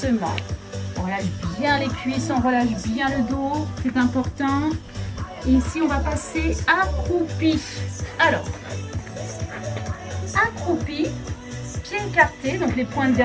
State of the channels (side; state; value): both; identical; correlation 1.00